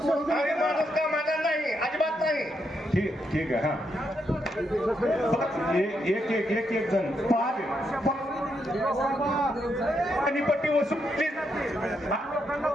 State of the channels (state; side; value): normal; both; correlation 0.80